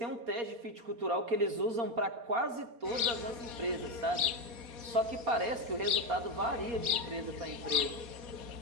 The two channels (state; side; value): late; left; 4.1 ms